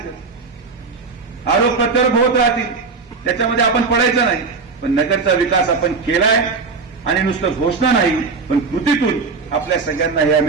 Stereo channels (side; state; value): left; quieter; 4.6 dB